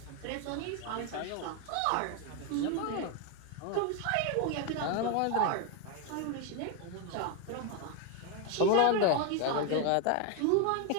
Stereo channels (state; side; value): different; both; correlation 0.01